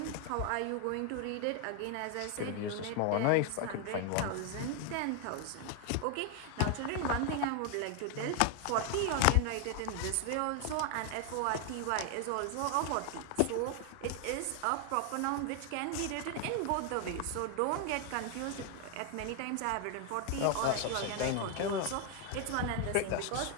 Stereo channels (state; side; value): different; both; correlation 0.01